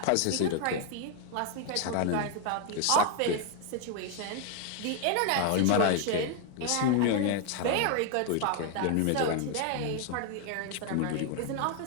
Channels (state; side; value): different; both; correlation 0.00